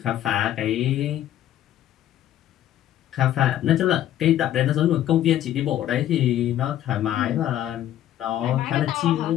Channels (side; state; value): right; quieter; 12.1 dB